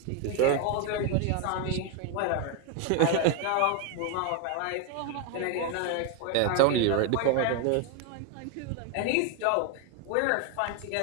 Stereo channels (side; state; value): both; different; correlation 0.01